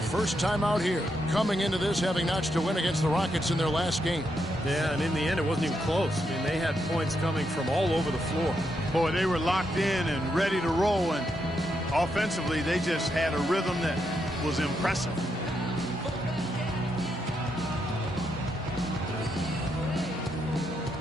first time out here, coming into this having notched a win against the Rockets in their last game. Yeah, and in the end, it wasn't even close. I mean, they had points coming from all over the floor. Boy, they were locked in and ready to roll, and offensively, they just had a rhythm that was impressive.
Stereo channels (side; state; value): both; normal; correlation 0.81